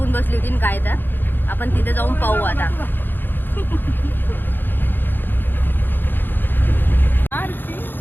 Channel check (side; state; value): right; late; 0.095 ms